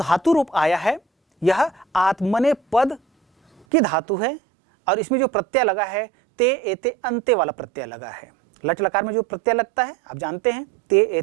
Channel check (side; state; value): left; drops out; at 3.7 s